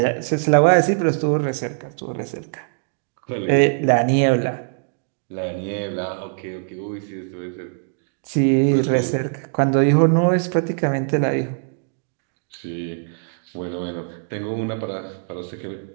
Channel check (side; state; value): left; silent; digital silence